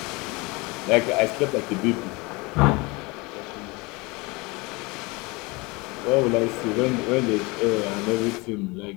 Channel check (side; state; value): right; quieter; 25.5 dB